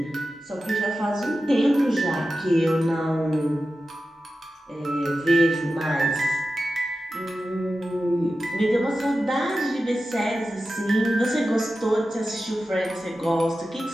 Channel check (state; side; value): normal; both; correlation 0.93